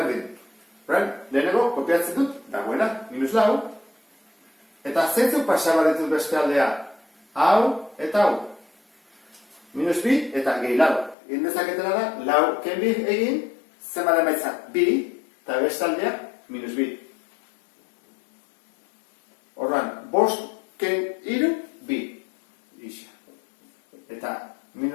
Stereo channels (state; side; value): drops out; right; at 11.2 s